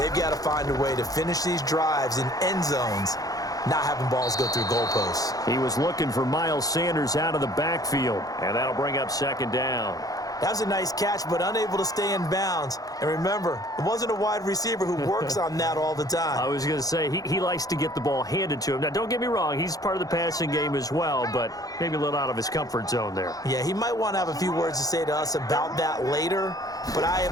got to find a way to finish these drives in end zones, not having balls go through goalposts. He was looking for Miles Sanders out of the backfield, and that'll bring up 2nd down. That was a nice catch, but unable to stay in bounds. And remember, it wasn't a wide receiver who works on that all the time. I was going to say, he likes to get the ball handed to him. Now, don't get me wrong, he's part of the passing game as well, but maybe a little out of his comfort zone there. Yeah, he might want to have a few words to say to us about that later, but I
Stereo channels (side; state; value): right; late; 0.18 ms